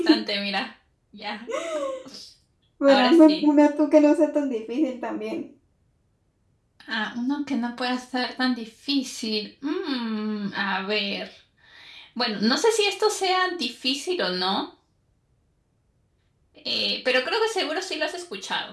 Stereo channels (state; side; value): identical; both; correlation 1.00